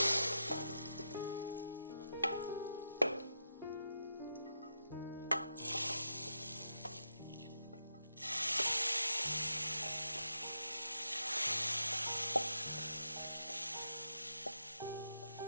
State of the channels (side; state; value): both; inverted; correlation -0.85